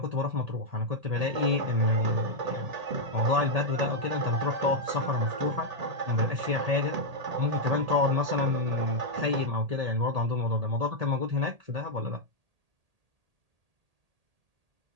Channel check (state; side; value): late; left; 1.8 ms